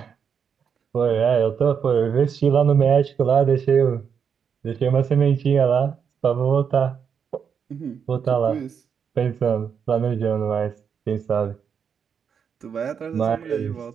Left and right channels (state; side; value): quieter; left; 7.1 dB